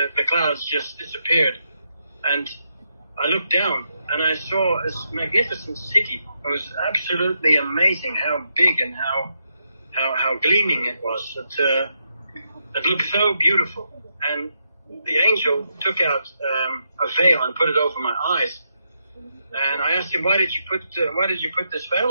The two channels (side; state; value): both; inverted; correlation -0.82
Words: clouds just disappeared. And I looked down, and I saw this magnificent city. It was absolutely amazing how big and how gleaming it was. It looked so beautiful. And the angel took out a veil and put it over my eyes. And I asked him, why did you put this veil